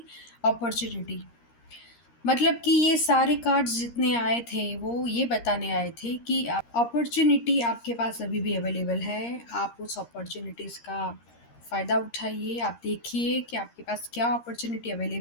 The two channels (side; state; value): right; late; 13 ms